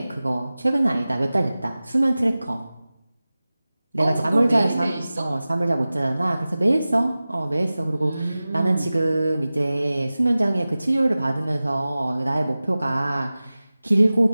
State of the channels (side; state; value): both; inverted; correlation -0.97